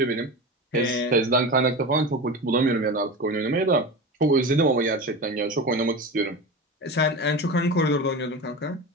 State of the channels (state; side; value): normal; both; correlation 0.27